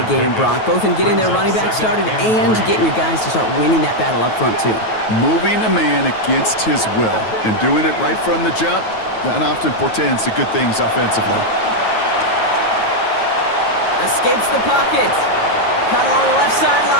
game, Brock, both in getting their running back started and getting your guys to start winning that battle up front, too. Moving a man against his will and doing it right from the jump, that often portends to good things offensively. Escapes the pocket. Caught along the left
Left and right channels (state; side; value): late; right; 9.2 ms